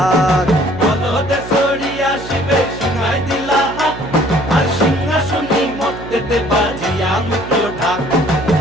বলদে সরি আসিবে সিংহায় দিলা হাত, আর সিংহাসনে মর্তেতে বাজিয়া উঠল ঢাক।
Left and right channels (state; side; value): noise; right; hum, 12 dB below the sound